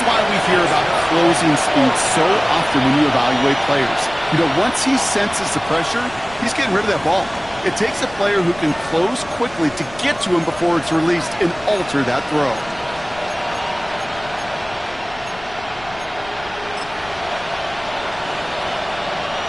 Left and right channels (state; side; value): noise; left; rumble, 20 dB below the sound